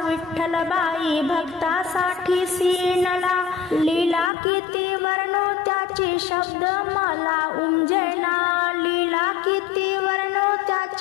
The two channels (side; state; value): right; drops out; at 4.3 s